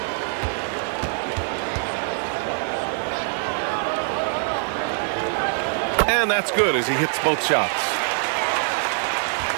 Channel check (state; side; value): silent; left; digital silence